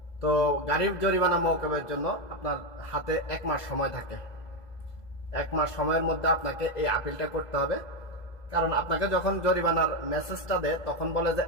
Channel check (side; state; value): right; late; 2.0 ms